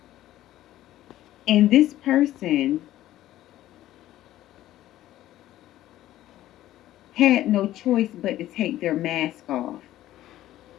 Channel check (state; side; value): quieter; right; 14.1 dB